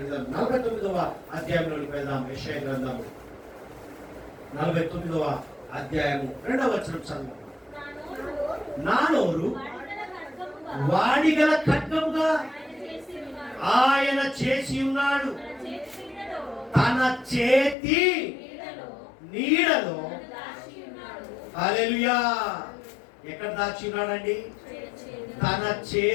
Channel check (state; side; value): drops out; right; at 17.8 s